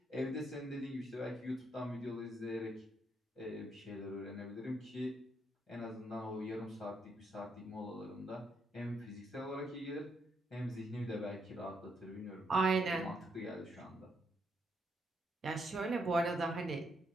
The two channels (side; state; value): both; normal; correlation 0.76